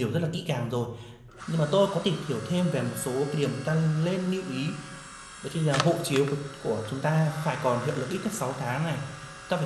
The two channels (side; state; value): both; identical; correlation 1.00